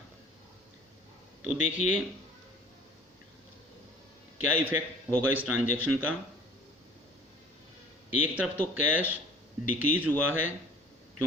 तो देखिए क्या इफेक्ट होगा इस ट्रांजैक्शन का। एक तरफ तो कैश डिक्रीज हुआ है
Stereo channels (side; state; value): both; normal; correlation 0.48